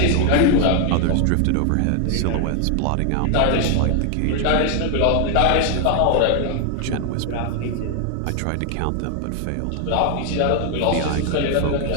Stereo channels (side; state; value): both; different; correlation 0.00